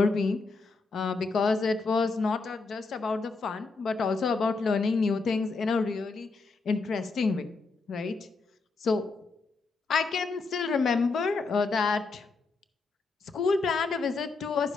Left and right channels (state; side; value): quieter; right; 4.0 dB